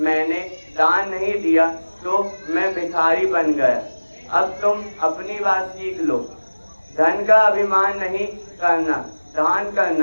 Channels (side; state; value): both; inverted; correlation -1.00